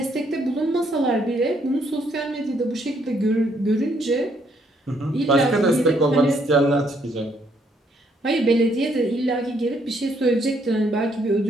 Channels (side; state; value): both; normal; correlation 0.70